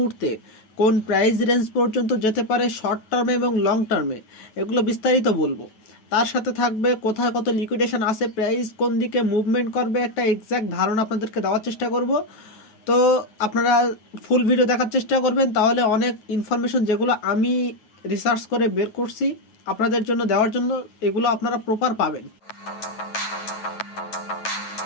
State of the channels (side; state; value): right; late; 9.3 ms